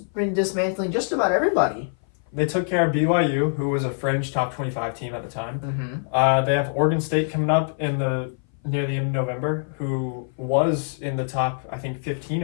dismantling just about everybody. They took care of BYU, who was a fringe top 25 team at the time. Mm-hmm. They have Oregon State coming up near the end of November, who was in the top, I think, 15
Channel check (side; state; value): right; silent; 58 dB below the other